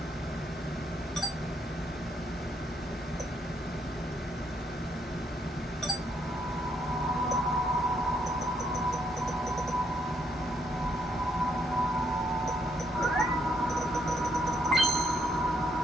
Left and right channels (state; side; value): normal; both; correlation 0.73